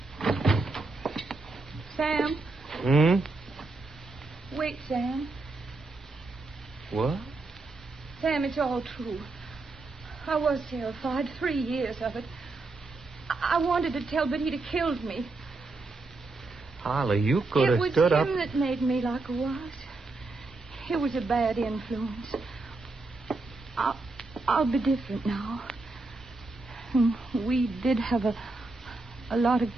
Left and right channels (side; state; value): left; quieter; 3.4 dB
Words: Sam. Wait, Sam. What? Sam, it's all true. I was terrified. 3 years of it. I wanted to tell, but he'd have killed me. Holly, you could have stood up. It was him that made me like I was. It was a bad influence. I'll be different now. We did have a lot of